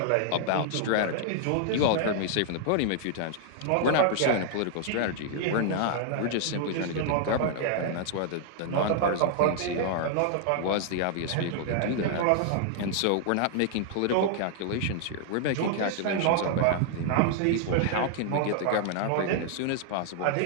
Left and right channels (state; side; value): different; both; correlation -0.01